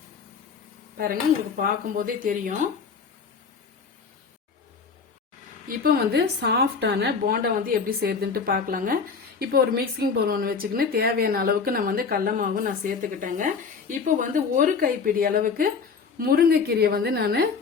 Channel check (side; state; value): right; quieter; 5.4 dB